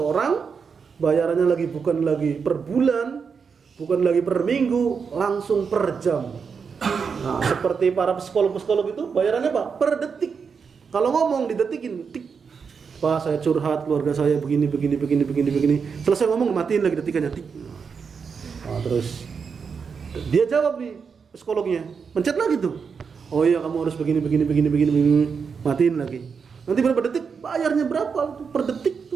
bayarannya bukan lagi per bulan, bukan lagi per minggu, langsung per jam. Nah, seperti para psikolog itu bayarannya apa? Per detik. Kalau ngomong didetikin, tik. Pak, saya curhat, keluarga saya begini. Selesai ngomong, matiin lagi detikannya, tik. Nah, terus dia jawab nih psikolognya, pencet lagi tuh. Oh iya, kamu harus begini, matiin lagi. Nanti berapa detik, bayarnya berapa tuh per detik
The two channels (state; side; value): quieter; left; 5.9 dB